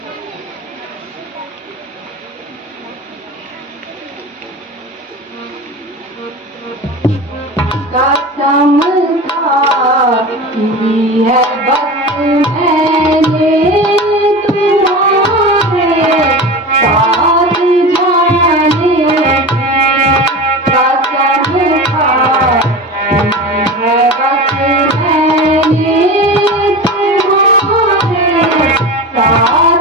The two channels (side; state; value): both; normal; correlation 0.29